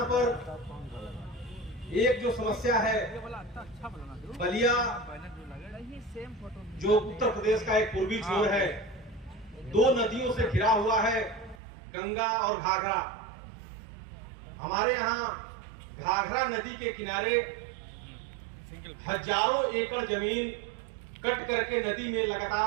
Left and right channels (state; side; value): drops out; left; at 11.6 s